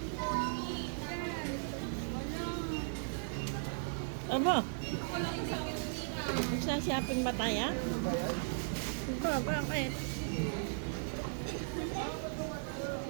Aba. Magsashopping ba tayo? Ba, bakit?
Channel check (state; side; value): silent; left; digital silence